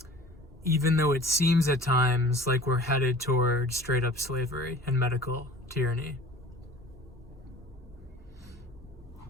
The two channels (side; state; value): both; normal; correlation 0.44